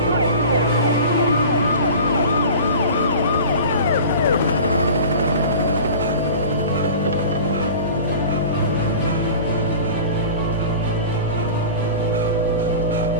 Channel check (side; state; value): both; inverted; correlation -0.38